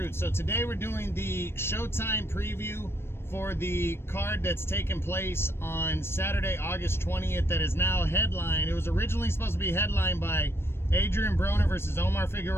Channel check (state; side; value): late; right; 0.12 ms